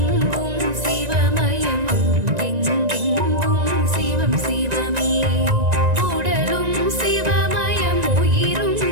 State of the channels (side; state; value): left; late; 1.9 ms